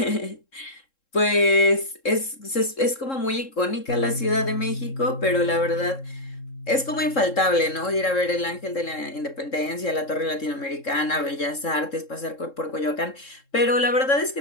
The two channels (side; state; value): right; late; 3.7 ms